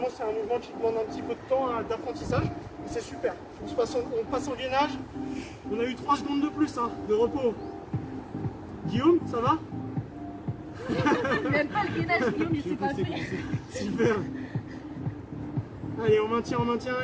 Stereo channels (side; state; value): both; identical; correlation 1.00